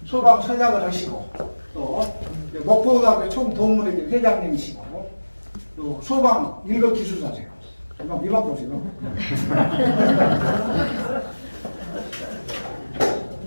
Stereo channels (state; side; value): inverted; both; correlation -1.00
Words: 소방 선양을 하시고 또 목포고등학교 총동문회 회장님이시고 또 소방 일급 기술사세요. 이만 보세요.